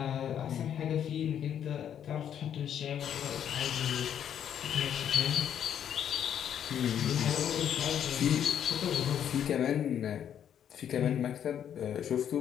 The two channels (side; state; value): right; quieter; 9.3 dB